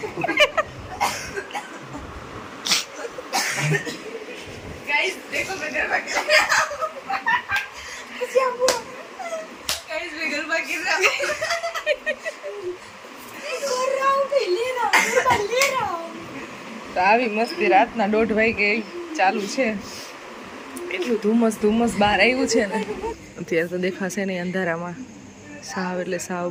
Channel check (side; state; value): both; identical; correlation 1.00